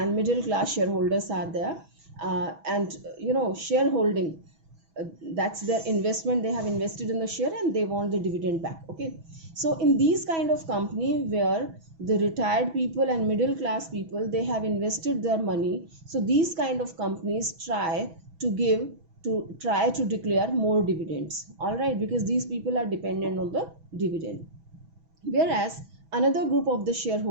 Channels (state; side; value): late; left; 6.1 ms